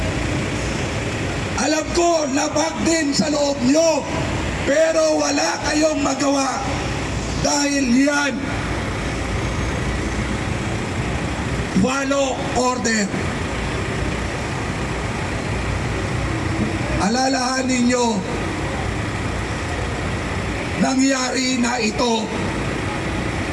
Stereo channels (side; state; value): both; identical; correlation 1.00